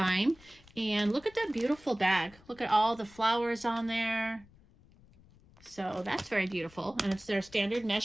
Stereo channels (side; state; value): left; noise; rumble, 26 dB below the sound